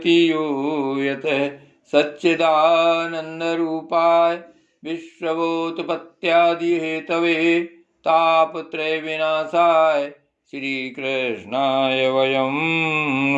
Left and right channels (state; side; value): identical; both; correlation 1.00